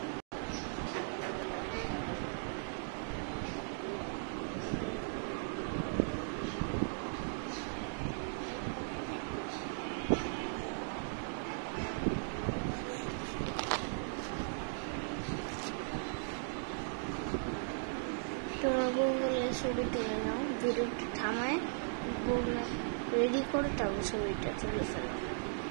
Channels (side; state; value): left; silent; digital silence